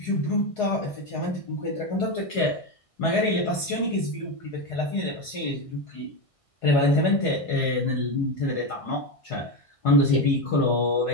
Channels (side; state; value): right; late; 1.6 ms